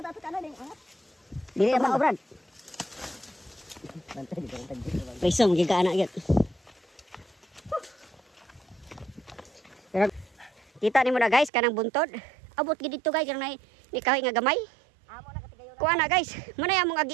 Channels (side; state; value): left; drops out; at 11.5 s